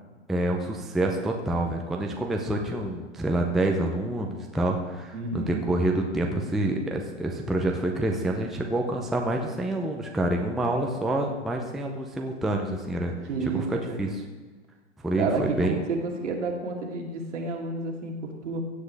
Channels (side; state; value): both; normal; correlation 0.57